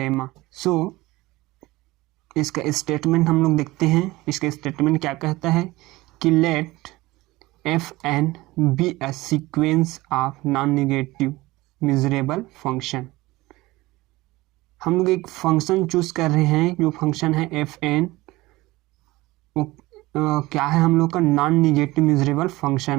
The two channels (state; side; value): quieter; left; 19.7 dB